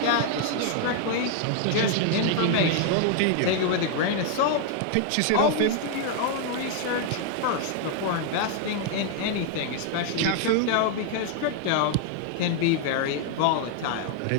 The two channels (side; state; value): both; different; correlation 0.00